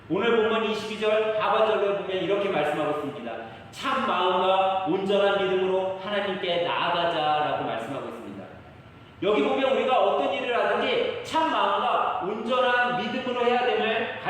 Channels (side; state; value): both; identical; correlation 1.00